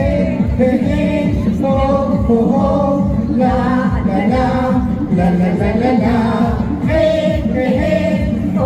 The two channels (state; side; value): identical; both; correlation 1.00